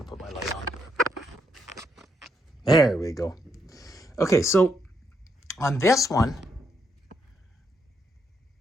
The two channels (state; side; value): normal; both; correlation 0.77